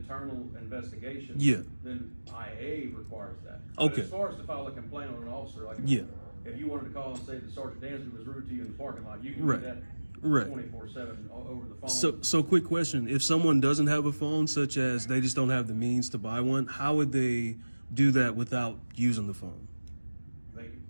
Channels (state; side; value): inverted; both; correlation -1.00